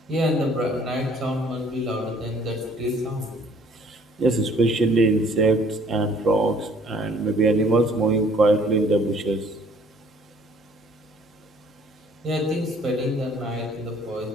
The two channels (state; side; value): normal; both; correlation 0.58